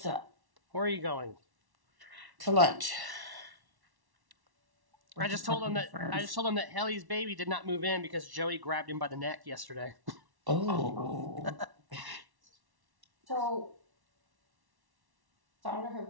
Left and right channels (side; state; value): left; late; 1.1 ms